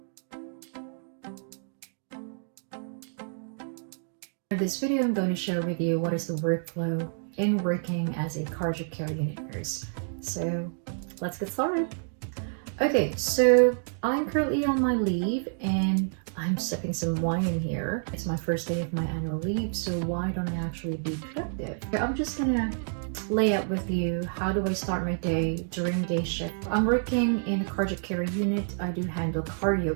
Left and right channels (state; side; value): silent; left; digital silence